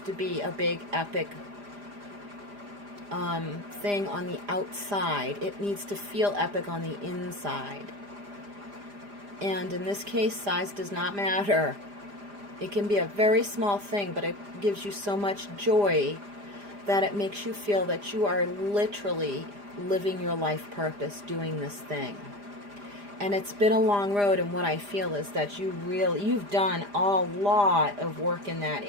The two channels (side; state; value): left; late; 4.9 ms